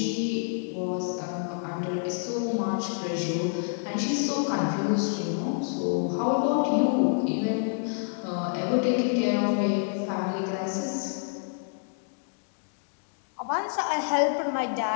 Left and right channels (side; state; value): right; silent; digital silence